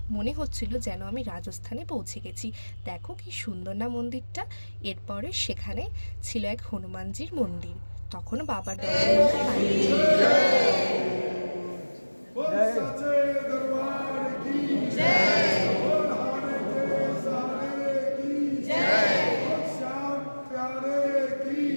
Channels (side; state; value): both; inverted; correlation -1.00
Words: মনে হচ্ছিল যেন আমি রাজস্থানে পৌঁছে গেছি। দেখো কি সুন্দর না মন্দিরটা। এরপরে সেখানে ছিল এক হনুমানজির মন্দির। তখনও বাবার দর্শন আমরা পাইনি।